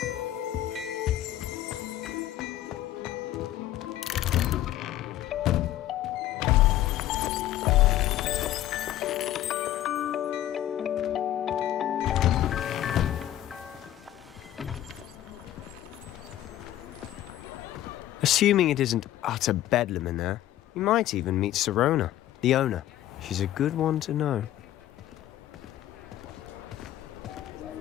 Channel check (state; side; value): quieter; right; 13.2 dB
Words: Assuming it isn't utter bedlam in there, you might even meet Sirona, the owner. She's a good one to know.